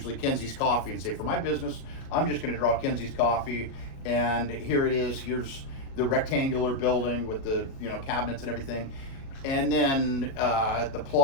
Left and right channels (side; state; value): right; late; 36 ms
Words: Kenzie's Coffee, and say, for my business, I'm just going to draw Kenzie's Coffee, and here it is. Here's the rectangular building with the cabinets and everything. And then the